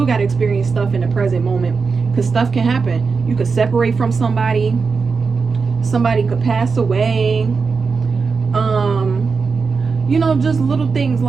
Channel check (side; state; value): left; quieter; 4.9 dB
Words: got to experience stuff in the present moment, because stuff can happen. You could separate from somebody could pass away, you know, just little things